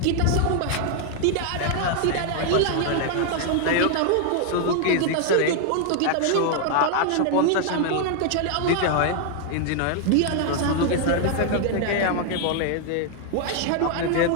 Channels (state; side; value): different; both; correlation 0.00